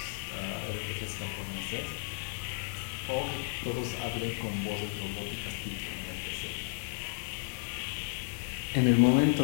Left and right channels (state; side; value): silent; right; digital silence